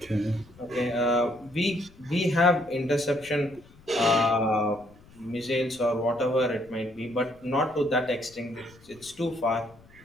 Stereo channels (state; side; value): noise; left; rumble, 25 dB below the sound